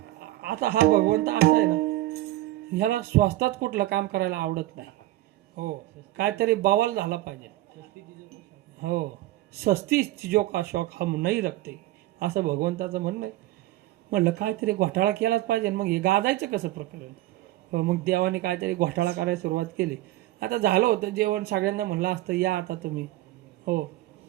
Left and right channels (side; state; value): left; quieter; 16.4 dB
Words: आता हा भगवंत असा आहे ना, ह्याला स्वस्तात कुठलं काम करायला आवडत नाही. हो, काहीतरी बवाल झाला पाहिजे. हो, सस्ती चीजों का शौक हम नाही रखते, असं भगवंताचं म्हणणं आहे. म्हणलं काहीतरी घोटाळा केलाच पाहिजे. मग हे गाजायचं कसं प्रकरण? मग देवाने काहीतरी घोटाळा करायला सुरुवात केली. आता झालं होतं जेवण, सगळ्यांना म्हणलं असतं या आता तुम्ही. हो,